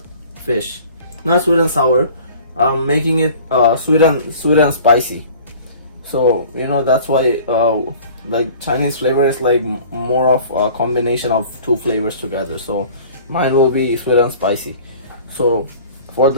fish. Not sweet and sour. I'm making it sweet and spicy. So you know, that's why like Chinese flavor is like more of a combination of two flavors together. So mine will be sweet and spicy. So for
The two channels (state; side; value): inverted; both; correlation -0.46